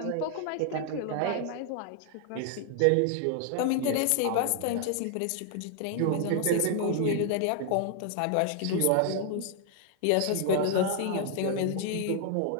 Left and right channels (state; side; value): different; both; correlation 0.00